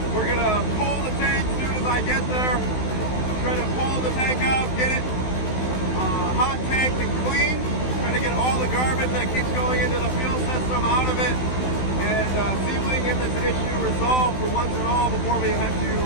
We're gonna pull the tank as soon as I get there. Try to pull the tank out, get it hot tanked and clean. Try to get all the garbage that keeps going into the fuel system out of it. And see if we can get this issue resolved for once and all before we have to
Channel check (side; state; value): right; late; 16 ms